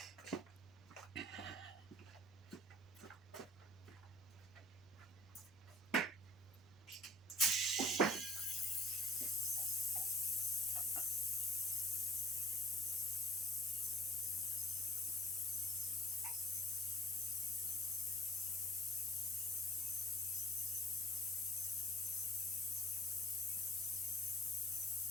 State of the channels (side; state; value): both; normal; correlation 0.51